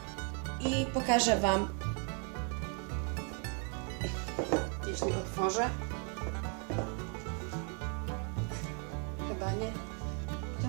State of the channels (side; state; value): left; quieter; 39.7 dB